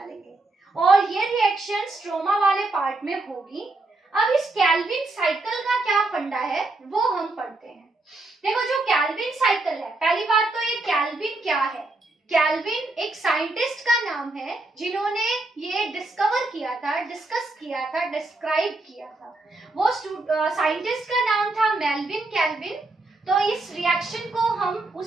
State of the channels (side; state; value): left; quieter; 3.0 dB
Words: लेंगे, और ये रिएक्शन स्ट्रोमा वाले पार्ट में होगी। अब इस केल्विन साइकिल का क्या फंडा है वो हम पढ़ते हैं। देखो जो केल्विन साइकिल है, पहली बात तो ये केल्विन क्या है। केल्विन एक साइंटिस्ट का नाम है जिन्होंने ये डिस्कवर किया था, डिस्कस किया था, डिस्क्राइब किया था। वो साइंटिस्ट का नाम था मेल्विन केल्विन। तो इस रिएक्शन को हम